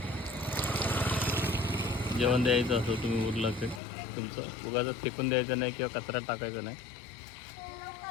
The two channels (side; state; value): right; drops out; at 3.8 s